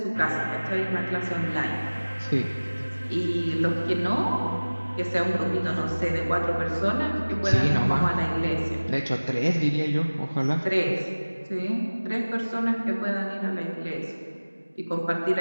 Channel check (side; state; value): both; inverted; correlation -1.00